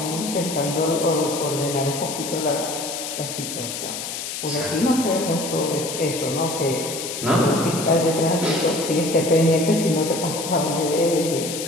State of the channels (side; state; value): left; noise; hiss, 6 dB below the sound